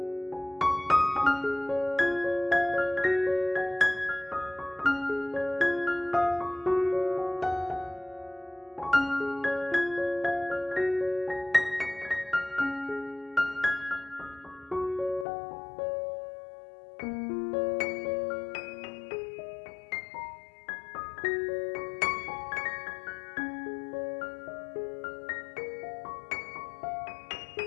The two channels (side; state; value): right; drops out; at 15.2 s